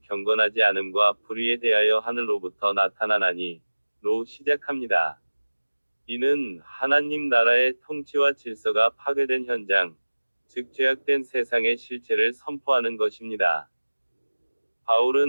경건하지 않음과 불의에 대하여 하늘로부터 나타나나니 로 시작합니다. 이는 하나님 나라의 통치와 질서가 파괴된 현장, 즉 죄악된 세상의 실체를 선포하는 것입니다.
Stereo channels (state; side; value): inverted; both; correlation -1.00